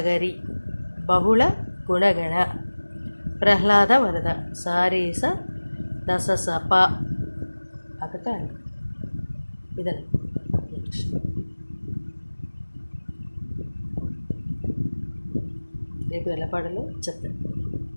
బహుళ గుణగణ ప్రహ్లాద వరద సారీస దశసప అకట. ఇదని రేపు ఎలా పాడాలో చెప్తాను.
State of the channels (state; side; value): inverted; both; correlation -1.00